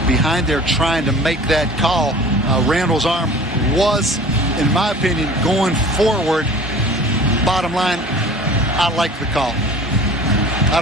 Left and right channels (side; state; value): both; normal; correlation 0.43